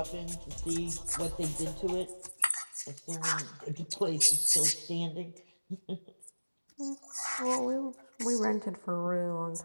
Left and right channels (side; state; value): both; inverted; correlation -1.00